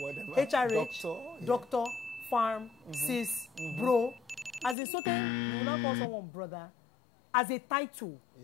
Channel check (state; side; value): drops out; right; at 4.8 s